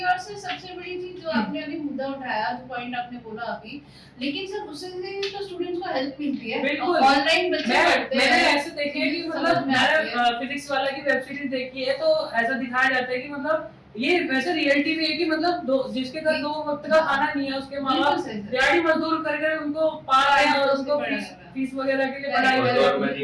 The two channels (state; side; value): identical; both; correlation 1.00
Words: और सर सबसे बड़ी चीज जो आपने अभी मुद्दा उठाया, जो पॉइंट आपने बोला अभी, लेकिन सर उससे तो स्टूडेंट्स को हेल्प मिलती है। बिल्कुल ऑनलाइन बच्चे पढ़ते हैं। मैंने ऐसे देखे है कि मतलब मैंने फिजिक्स वाला की वेब सीरीज देखी है तो ऐसा दिखाया जाता है कि मतलब ये वैसे रियलिटी भी है कि मतलब जिसके घर 2 वक्त का खाना नहीं है उसके माँ बाप दिहाड़ी मजदूर करके उनको पाल रहे हैं और उसको फीस वगैरह के लिए पढ़ाई कर रहे हैं। मैंने